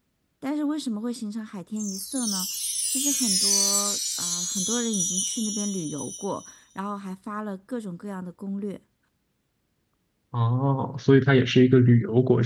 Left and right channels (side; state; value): both; identical; correlation 1.00